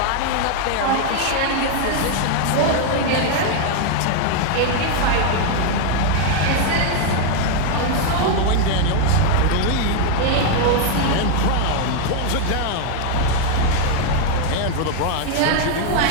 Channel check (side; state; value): both; different; correlation 0.00